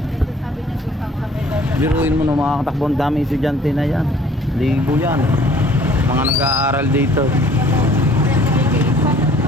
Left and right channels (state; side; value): normal; both; correlation 0.55